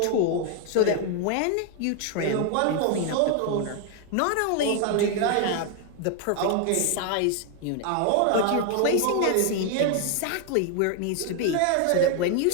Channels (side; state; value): both; different; correlation 0.00